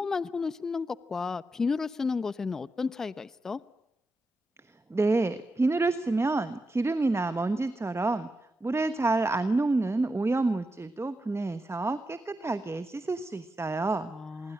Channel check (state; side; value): normal; both; correlation 0.88